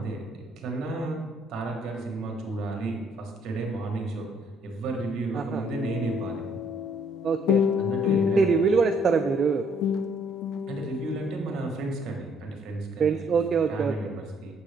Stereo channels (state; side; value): normal; both; correlation 0.65